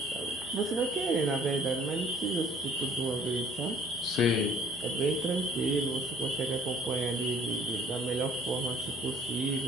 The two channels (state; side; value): normal; both; correlation 0.56